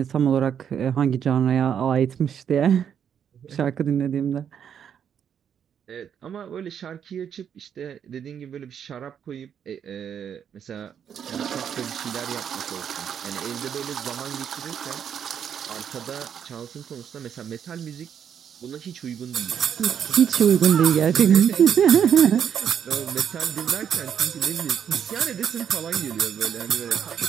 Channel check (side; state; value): left; quieter; 8.3 dB